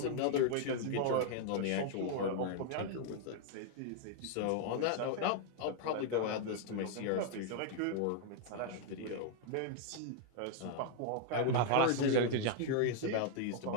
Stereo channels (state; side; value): different; both; correlation 0.00